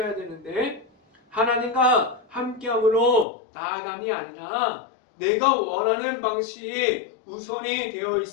되는데 하나님과 함께함으로 나아감이 아니라 내가 원하는 방식이 우선이 되어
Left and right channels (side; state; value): right; drops out; at 3.2 s